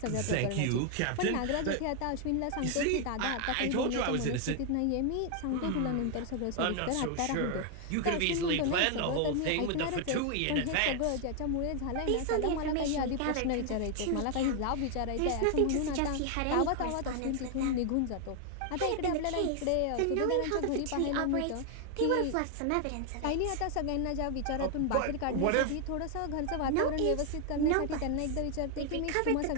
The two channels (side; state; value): both; different; correlation 0.00